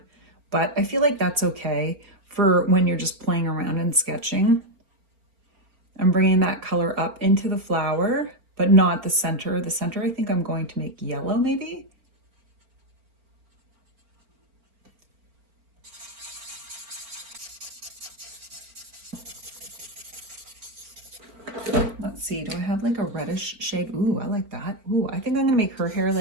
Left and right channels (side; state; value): left; late; 4.4 ms